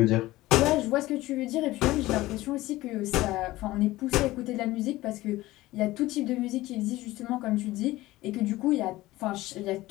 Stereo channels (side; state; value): right; quieter; 17.8 dB